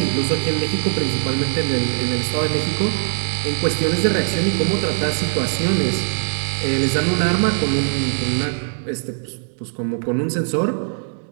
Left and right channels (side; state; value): left; silent; digital silence